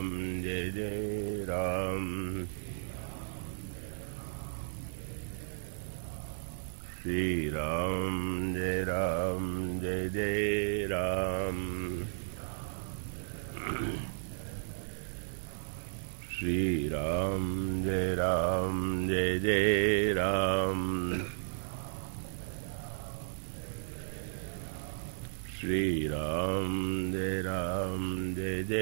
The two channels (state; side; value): silent; left; 55 dB below the other